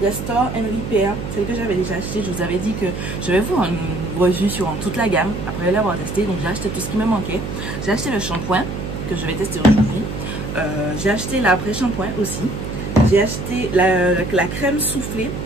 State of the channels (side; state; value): right; noise; hum, 6 dB below the sound